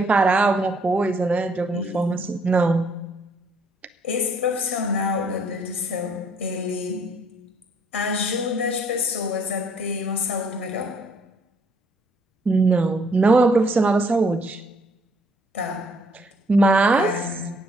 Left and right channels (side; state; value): both; normal; correlation 0.66